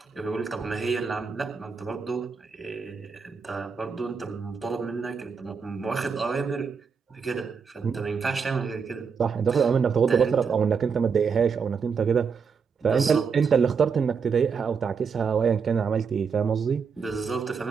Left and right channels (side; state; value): left; quieter; 5.9 dB